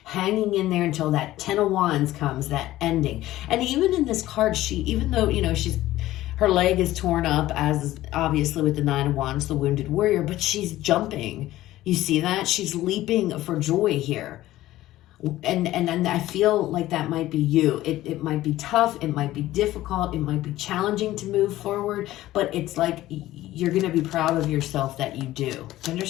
hanging in there until that 10 of Wands comes, that ending. And even in this card, even though, you know, she's Her leg is torn up, as obviously with the Nine of Wands, the wounded warrior, but she's jumping. You see that? She's leaping for joy here. And I feel like that might be you. It might be tough. It might be difficult. It might be challenging to move forward. But it's like you're going to be proud of yourself that you do. Do you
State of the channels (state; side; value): quieter; right; 15.5 dB